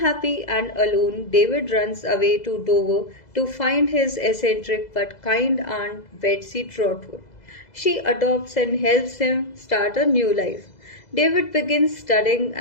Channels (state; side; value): late; right; 2.0 ms